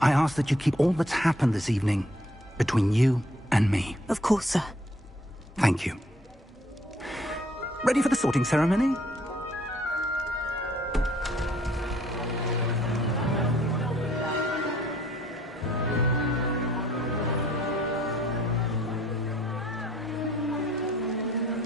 I ask that you keep all that's happened this evening between you and me. Of course, sir. Thank you. Ready for the sorting ceremony?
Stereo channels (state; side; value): normal; both; correlation 0.63